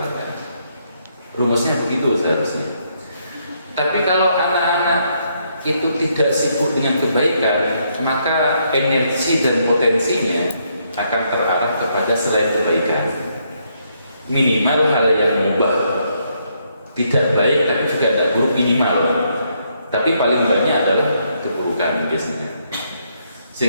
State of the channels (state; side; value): inverted; both; correlation -0.74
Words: Rumusnya begitu seharusnya. Tapi kalau anak-anak itu tidak sibuk dengan kebaikan, maka energi dan potensinya akan terarah kepada selain kebaikan. Minimal hal yang mubah, tidak baik tapi juga tidak buruk, minimal. Tapi paling banyak adalah keburukan biasanya.